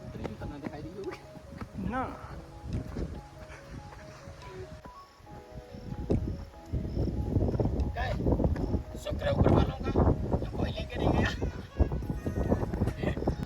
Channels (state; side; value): identical; both; correlation 1.00